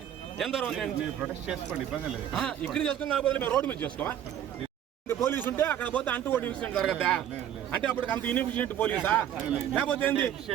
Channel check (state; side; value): quieter; left; 10.4 dB